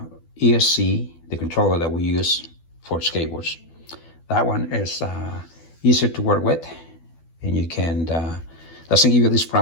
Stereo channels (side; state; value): right; late; 12 ms